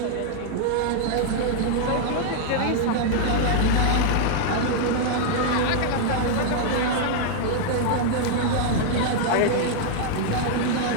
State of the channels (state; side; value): different; both; correlation -0.01